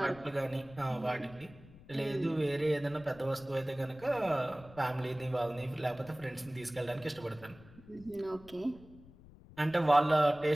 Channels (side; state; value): left; noise; rumble, 21 dB below the sound